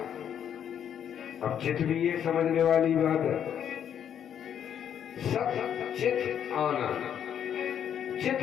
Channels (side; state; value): right; quieter; 9.1 dB